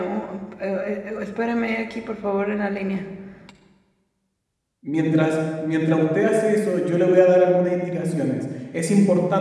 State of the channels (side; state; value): both; identical; correlation 1.00